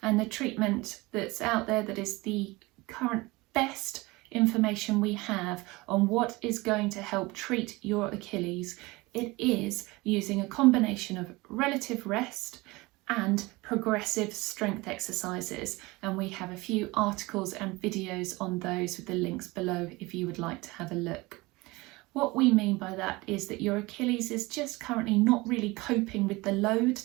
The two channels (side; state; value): left; quieter; 22.5 dB